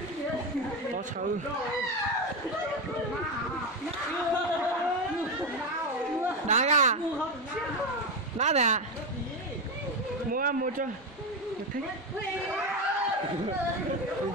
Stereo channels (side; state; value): both; normal; correlation 0.13